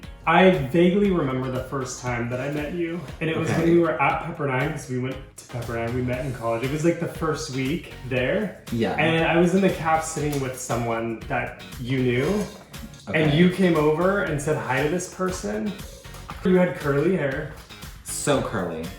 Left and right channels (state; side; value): identical; both; correlation 1.00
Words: I vaguely remember the first time that I met you, and it was when we were at Pepperdine, because we went to Pepperdine, we met in college. It was like the first week there. Yeah. And I was in the caf sitting with someone that you knew, and you came over and said hi to this person. You had curly hair. So curly.